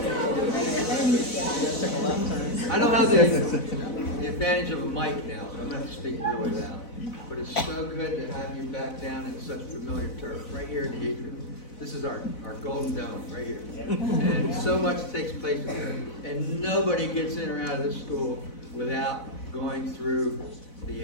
I don't have the advantage of a mic now, so I'm going to have to speak really loud. But it's so good to have you back down in such familiar turf, right here in the atrium. This is our golden dome, right here. And so much takes place here. And nobody gets in or out of this school without going through the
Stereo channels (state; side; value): late; right; 4.1 ms